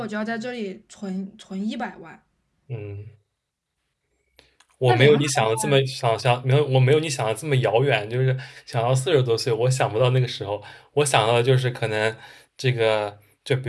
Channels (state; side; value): identical; both; correlation 1.00